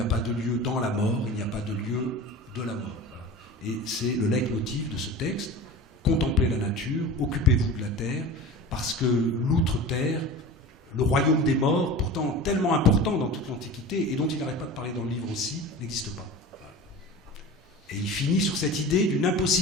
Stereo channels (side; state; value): both; normal; correlation 0.34